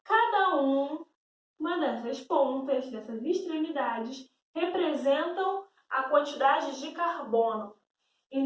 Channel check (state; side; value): identical; both; correlation 1.00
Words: cada uma dessas pontas, dessas extremidades, representam a quantidade de carbono.